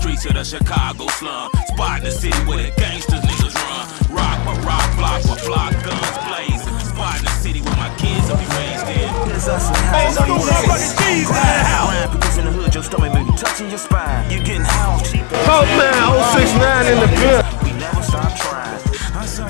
to the Chicago slum. Spot in the city where the gangsters niggas run. Rock by rock, block by block, guns blazing. Spot in the city where my kids will be raised in. Here's us and has another word for it. Grind because in the hood your stomach may be touching your spine. You getting house cheap ass. Oh man, 069 in the bill. We never stop trying. I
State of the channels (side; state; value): right; quieter; 33.7 dB